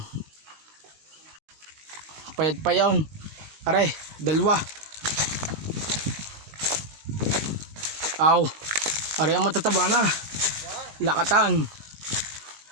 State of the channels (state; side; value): late; left; 19 ms